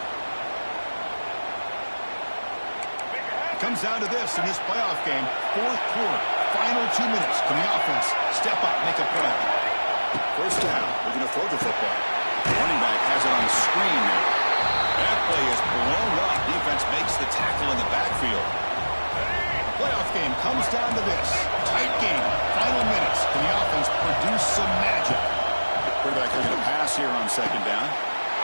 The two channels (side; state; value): both; inverted; correlation -1.00